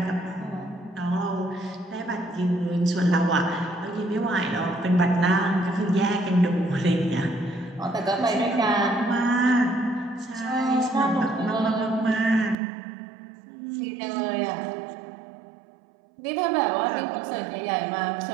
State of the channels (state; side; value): drops out; left; at 12.6 s